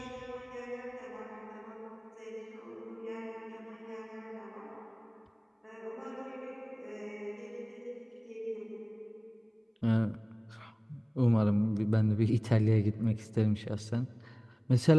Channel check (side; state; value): both; identical; correlation 1.00